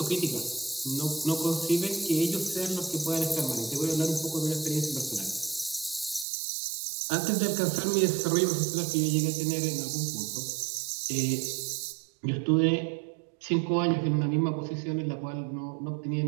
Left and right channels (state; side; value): drops out; left; at 6.2 s